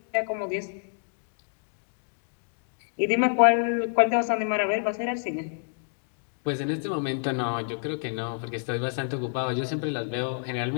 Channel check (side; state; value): right; silent; digital silence